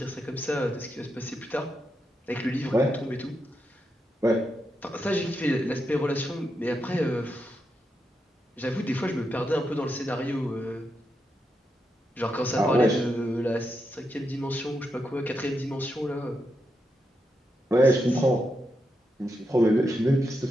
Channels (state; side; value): normal; both; correlation 0.84